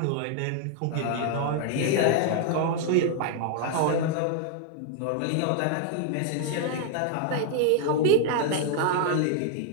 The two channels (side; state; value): both; different; correlation 0.00